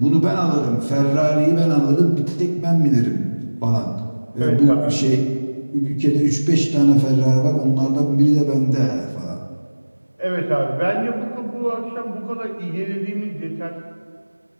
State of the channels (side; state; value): both; inverted; correlation -1.00